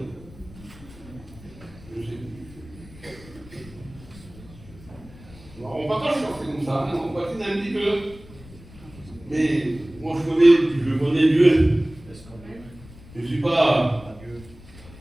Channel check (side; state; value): left; noise; rumble, 20 dB below the sound